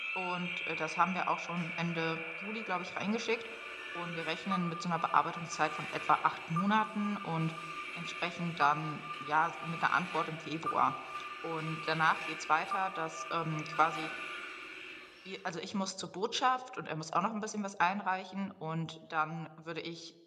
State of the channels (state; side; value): identical; both; correlation 1.00